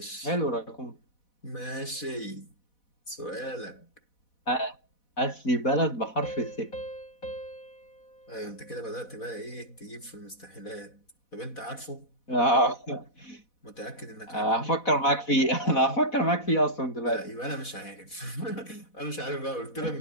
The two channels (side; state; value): right; late; 4.1 ms